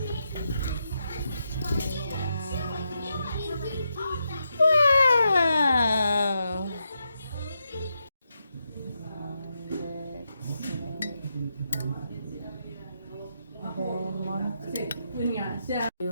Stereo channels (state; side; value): inverted; both; correlation -0.84